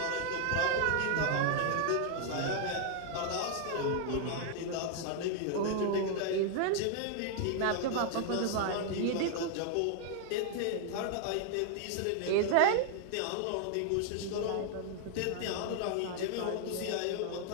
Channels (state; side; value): different; both; correlation 0.00